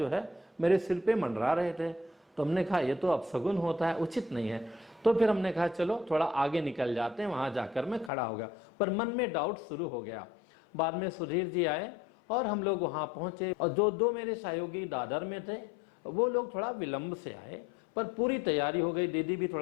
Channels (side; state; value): right; drops out; at 8.1 s